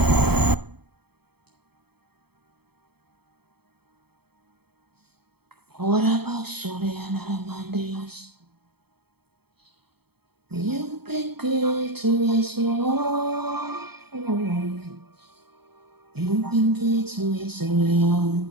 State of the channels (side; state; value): left; late; 0.97 ms